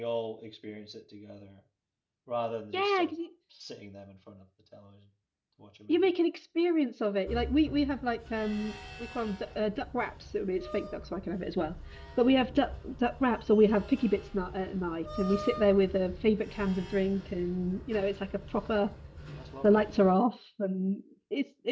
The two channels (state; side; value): identical; both; correlation 1.00